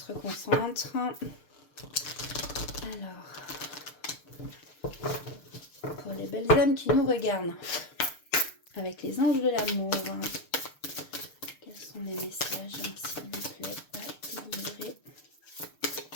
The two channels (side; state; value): right; late; 6.7 ms